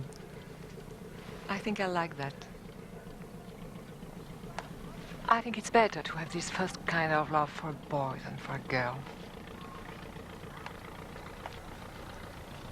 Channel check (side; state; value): both; identical; correlation 1.00